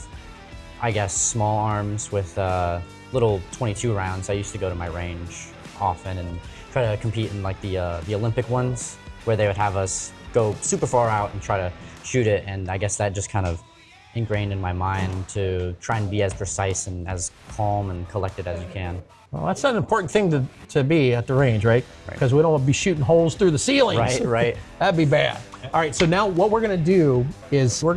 I guess, small arms with little 22 rounds. I used to go to my range often and try to compete in like the Olympic ones, where they would have us go super far out and try to shoot it. And I guess that just kind of ingrained in my mind to try and be as precise and as calm and collected as you can. Well, that's an important thing to be at the range, right? Because we don't want to be shooting holes through the ceilings. Right. That'd be bad. All right, so now what we're gonna do is we're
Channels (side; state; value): both; identical; correlation 1.00